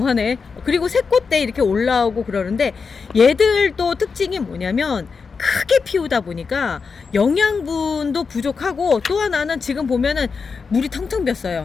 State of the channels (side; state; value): right; quieter; 5.2 dB